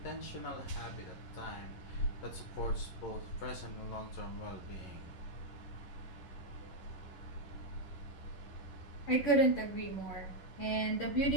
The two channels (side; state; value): right; late; 11 ms